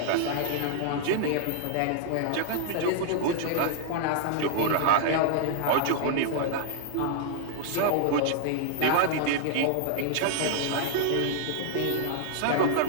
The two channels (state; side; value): different; both; correlation 0.00